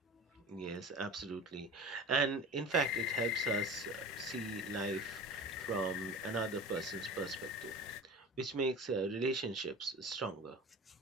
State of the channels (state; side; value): normal; both; correlation 0.36